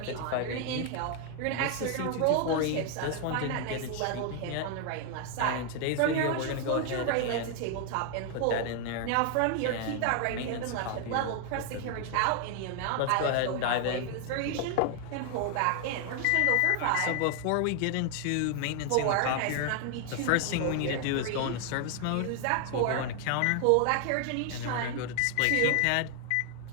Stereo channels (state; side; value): different; both; correlation 0.00